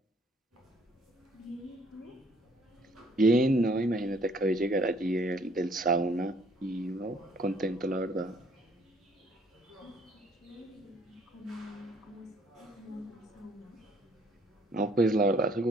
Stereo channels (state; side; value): normal; both; correlation 0.62